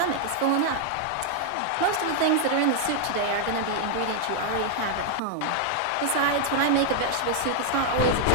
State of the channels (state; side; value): different; both; correlation 0.00